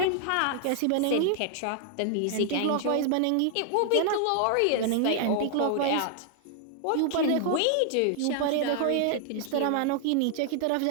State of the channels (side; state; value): both; different; correlation 0.00